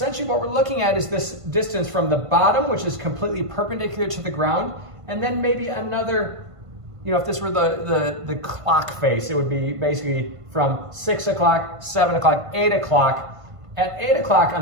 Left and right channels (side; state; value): left; late; 1.5 ms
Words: what we're looking at is this distance from the bottom, which is completely perpendicular to the ground, and then maybe another, you know, if this were the clock face, it would be basically from 6 o'clock, 7 o'clock, 8 o'clock. At 8 o'clock